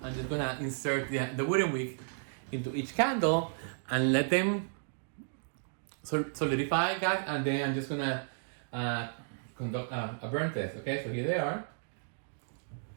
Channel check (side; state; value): left; silent; digital silence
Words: just gonna insert the wooden wick into each candle and let them solidify, guys. And then I'm just gonna conduct a burn test. Okay, so here they are.